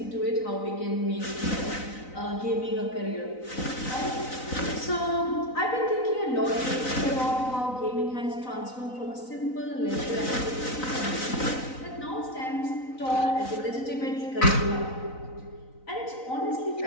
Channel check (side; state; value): right; late; 3.9 ms